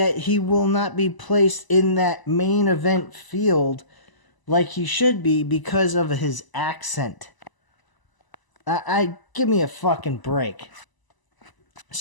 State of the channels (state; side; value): late; right; 1.0 ms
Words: he will not be placed in that main event field like he should be because of his accent. Give me a fucking break.